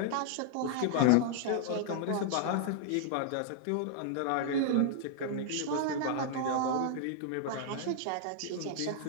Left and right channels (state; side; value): different; both; correlation -0.01